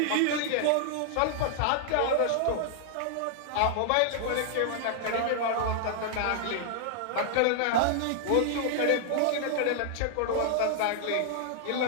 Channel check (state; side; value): different; both; correlation -0.01